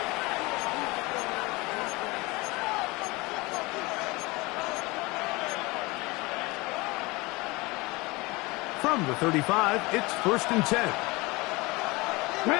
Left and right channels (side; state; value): right; quieter; 23.8 dB